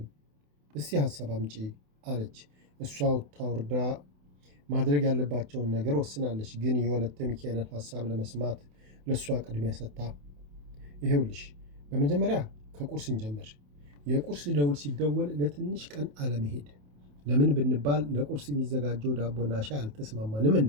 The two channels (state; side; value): late; left; 28 ms